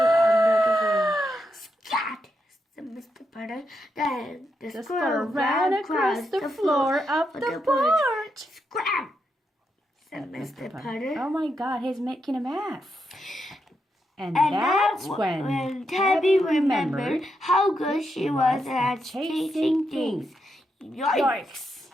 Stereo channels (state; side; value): normal; both; correlation 0.83